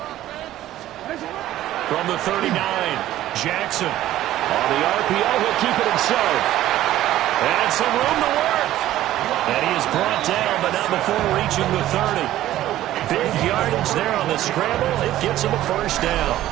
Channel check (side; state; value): left; quieter; 13.9 dB